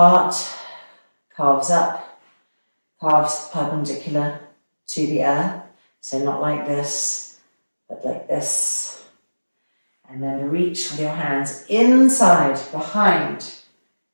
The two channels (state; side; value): inverted; both; correlation -1.00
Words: calves up, calves perpendicular to the earth. So not like this, but like this. And then reach with your hands inside, behind,